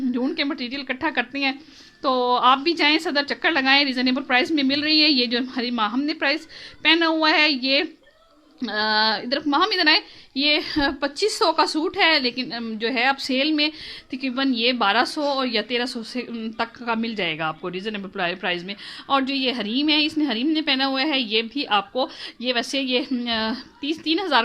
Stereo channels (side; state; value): both; identical; correlation 1.00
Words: के मटेरियल इकट्ठा करते हैं। तो आप भी जाएं, सदर चक्कर लगाएं, रिजनेबल प्राइस में मिल रही है। ये जो हमारी माँ हमने प्राइस पहना हुआ है, ये इधर माहम इधर आए, ये 2500 का सूट है, लेकिन जो है अब सेल में तकरीबन ये 1200 और या 1300 से तक का मिल जाएगा आपको रिजनेबल प्राइस में। और जो ये हरीम है, इसने हरीम ने पहना हुआ है, ये भी आपको, ये वैसे ये 3,000